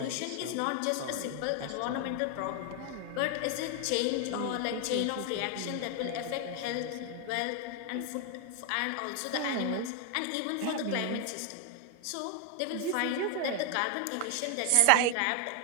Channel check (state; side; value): different; both; correlation 0.01